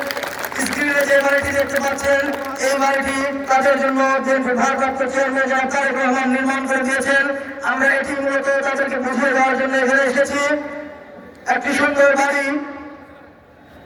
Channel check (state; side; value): identical; both; correlation 1.00